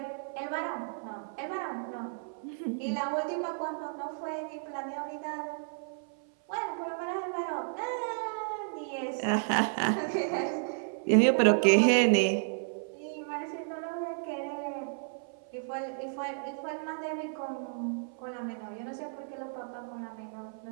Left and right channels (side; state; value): left; silent; 56 dB below the other